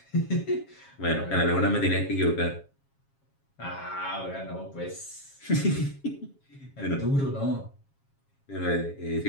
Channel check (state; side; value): late; right; 7.3 ms